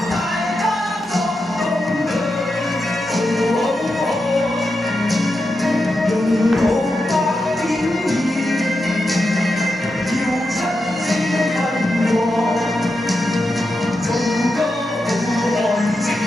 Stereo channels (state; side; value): normal; both; correlation 0.88